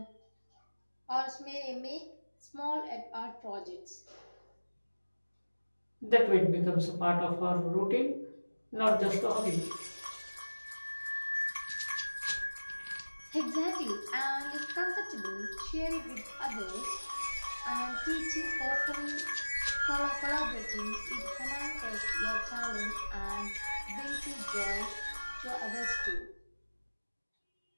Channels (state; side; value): inverted; both; correlation -1.00